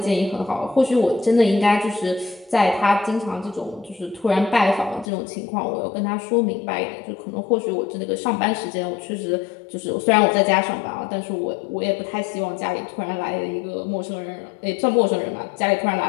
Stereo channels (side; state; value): right; drops out; at 5.1 s